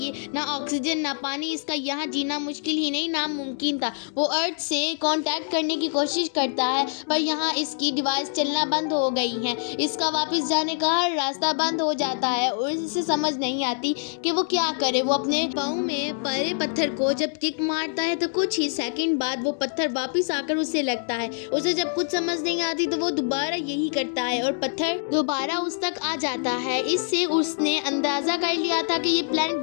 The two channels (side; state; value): right; silent; digital silence